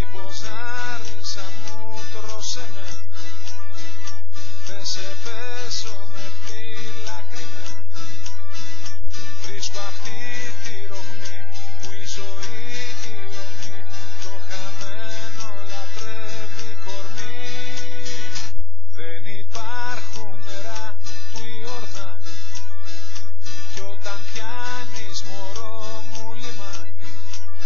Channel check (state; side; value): quieter; right; 3.5 dB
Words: άρισα μου, τρώσε με, δεν σε πέσω με φυλάκρη με. Βρίσκω αυτή τη ρογμή που η ζωή η ομή, το χαμένο λατρεύει κορμί. Δεν υπάρχουν νερά του Ιορδάνη κι όταν πιάνεις μωρό μου λιμάνι,